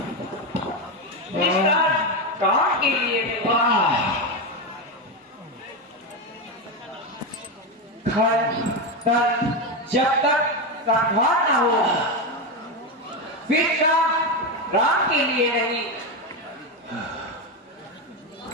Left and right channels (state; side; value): normal; both; correlation 0.12